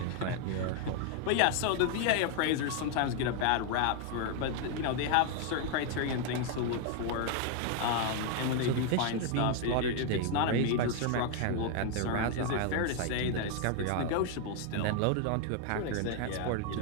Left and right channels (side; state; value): both; different; correlation 0.01